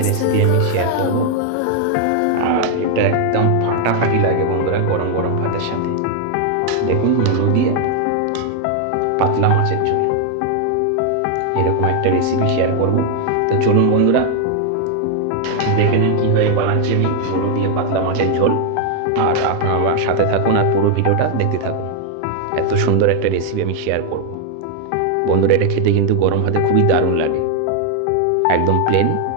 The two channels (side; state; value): both; different; correlation 0.00